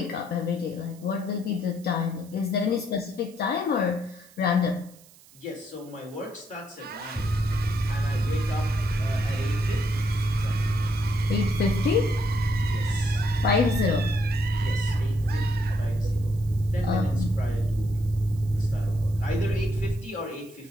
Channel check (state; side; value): noise; right; hiss, 25 dB below the sound